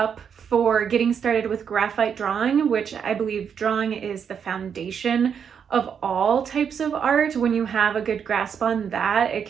for getting started with graphite drawing, which I believe drawing is the foundation of all types of art. When you have a good grasp on that, it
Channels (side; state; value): left; quieter; 7.4 dB